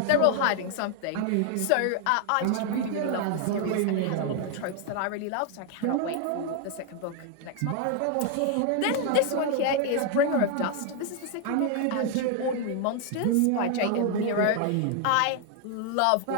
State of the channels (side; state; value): both; different; correlation 0.00